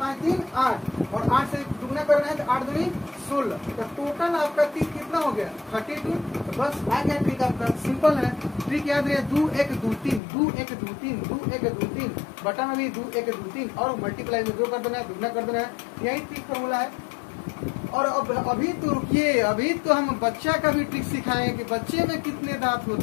3 8 और 8 से दुगुना करना है तो 8 दूनी 16, तो टोटल आपका 30 कितना हो गया 32। तो बस आ गया ट्रिक आपका, सिंपल है। ट्रिक याद रहे 2 1 2 3, 2 1 2 3, 2 1 2 3, बटा में भी 2 1 2 3 और मल्टीप्लाई में 2 कर देना है, दुगना कर देना है, यही ट्रिक फॉर्मूला है। और अब अभी तो रुकिए, अभी तो हम बच्चा का भी ट्रिक सिखाएंगे कि बच्चे में कितने दांत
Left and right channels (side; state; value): right; drops out; at 10.2 s